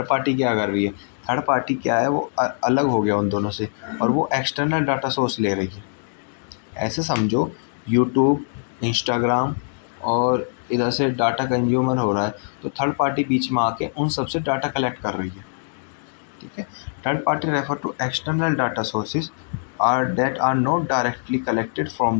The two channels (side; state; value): right; silent; digital silence